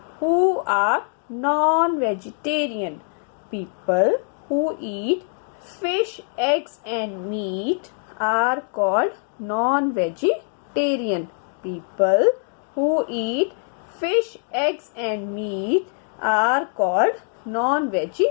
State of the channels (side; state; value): right; silent; 63 dB below the other